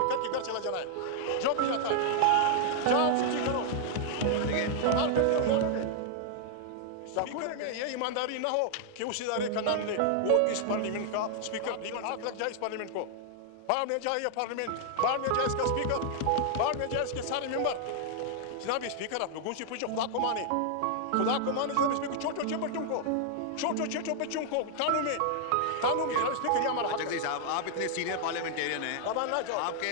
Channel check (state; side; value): different; both; correlation 0.00